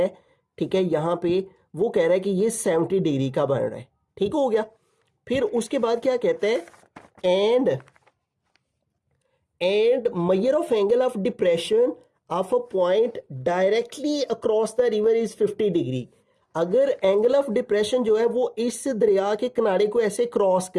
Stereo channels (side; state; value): both; identical; correlation 1.00